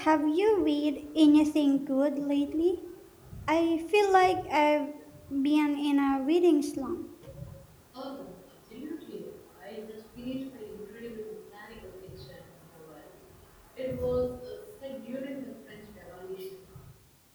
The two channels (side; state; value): both; identical; correlation 1.00